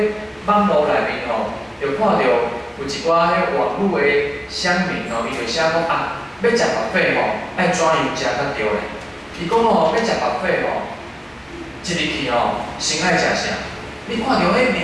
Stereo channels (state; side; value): identical; both; correlation 1.00